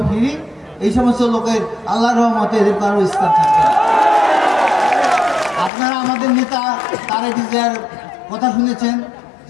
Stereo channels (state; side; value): drops out; right; at 5.7 s